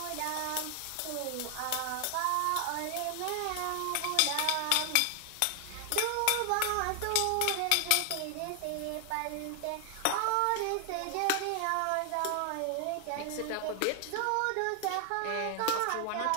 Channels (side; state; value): both; different; correlation 0.00